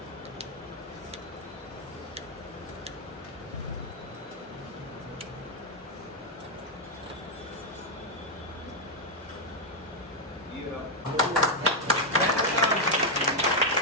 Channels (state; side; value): normal; both; correlation -0.01